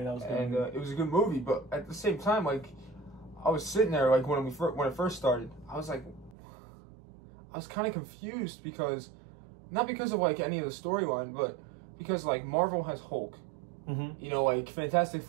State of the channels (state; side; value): drops out; left; at 6.4 s